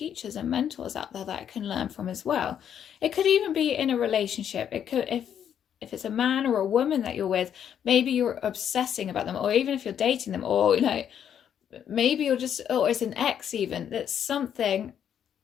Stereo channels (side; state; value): right; quieter; 9.0 dB